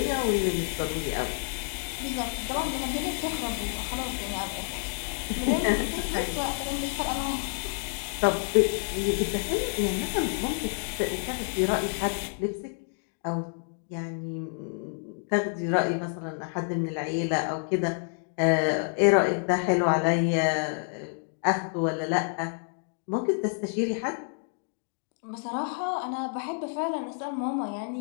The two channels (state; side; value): silent; right; 58 dB below the other